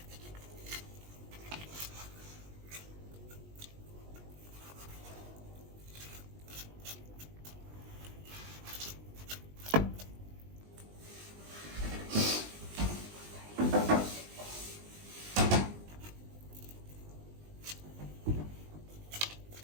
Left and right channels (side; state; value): left; late; 20 ms